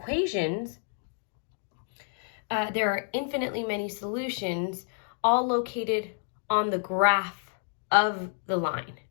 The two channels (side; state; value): right; silent; 58 dB below the other